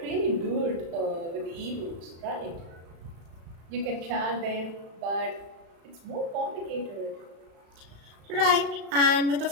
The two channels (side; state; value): left; late; 35 ms